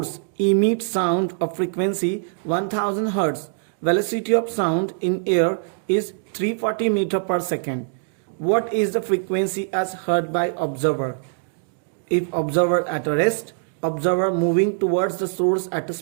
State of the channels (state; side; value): silent; left; digital silence